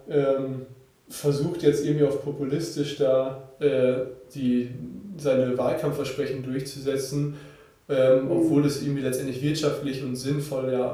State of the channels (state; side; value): identical; both; correlation 1.00